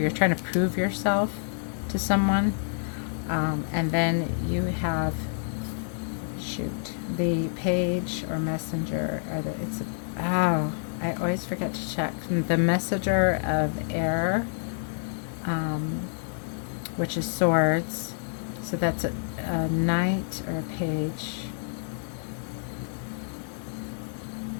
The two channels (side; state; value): right; silent; digital silence